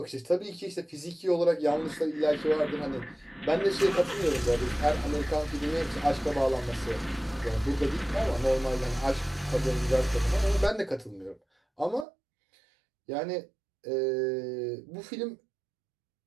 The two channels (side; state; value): left; drops out; at 12.1 s